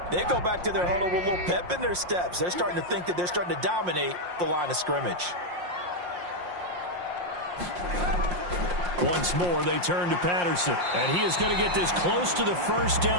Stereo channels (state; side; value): late; left; 5.6 ms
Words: they go back to their huddle with a little pep in their steps. They're starting to think that they're starting to dominate the line of scrimmage. Once more, they turn to Patterson, and he is going to get this close to the first